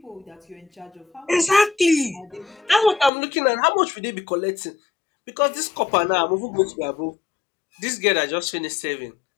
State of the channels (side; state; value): right; drops out; at 3.1 s